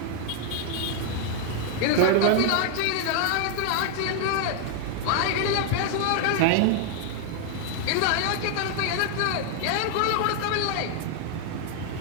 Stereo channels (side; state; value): both; different; correlation 0.00